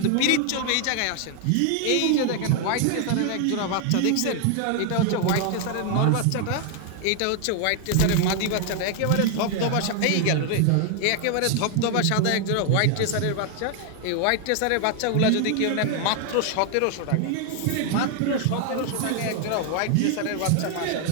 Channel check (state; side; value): different; both; correlation 0.00